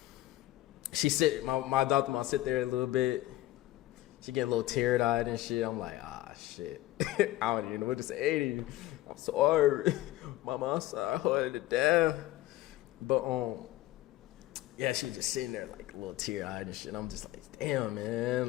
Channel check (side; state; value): right; quieter; 16.0 dB